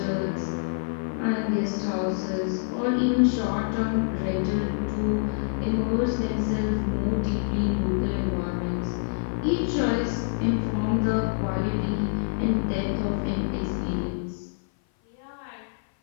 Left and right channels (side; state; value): right; silent; 56 dB below the other